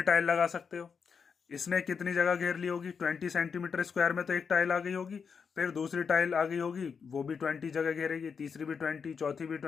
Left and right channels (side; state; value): right; quieter; 6.1 dB